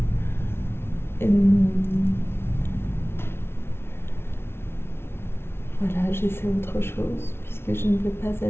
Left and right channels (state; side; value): late; right; 0.12 ms